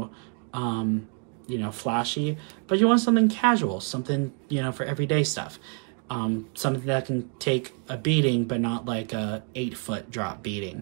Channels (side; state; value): left; quieter; 36.5 dB